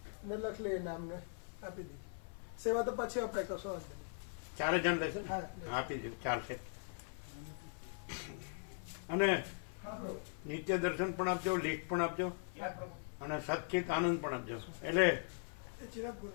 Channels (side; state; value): right; silent; 51 dB below the other